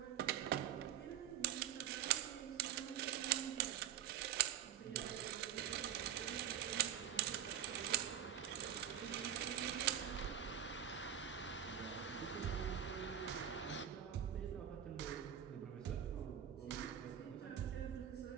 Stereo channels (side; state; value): left; quieter; 10.4 dB